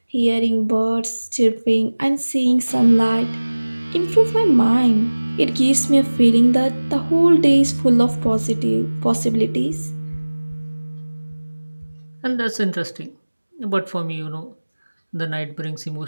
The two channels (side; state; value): both; inverted; correlation -1.00